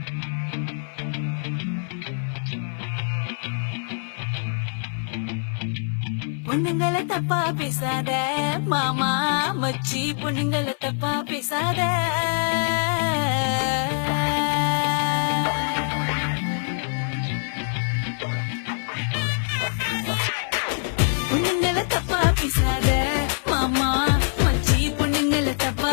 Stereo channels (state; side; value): silent; right; 55 dB below the other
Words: பொண்ணுங்களை தப்பா பேசாத மாமா மச்சி, பொண்ணுங்களை தப்பா பேசாத. பொண்ணுங்களை தப்பா பேசாத மாமா மச்சி, பொண்ணுங்களை தப்பா